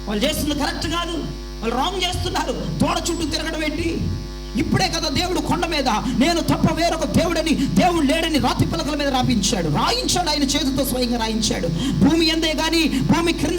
వాళ్ళు చేస్తుంది కరెక్ట్ కాదు, వాళ్ళు రాంగ్ చేస్తున్నారు, దూడ చుట్టూ తిరగడం ఏంటి? ఇప్పుడే కదా దేవుడు కొండ మీద నేను తప్ప వేరొక దేవుడని, దేవుడు లేడని రాతి పలకల మీద రాయించాడు. ఆయన చేతితో స్వయంగా రాయించాడు. భూమి ఎందే కానీ, భూమి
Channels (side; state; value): both; identical; correlation 1.00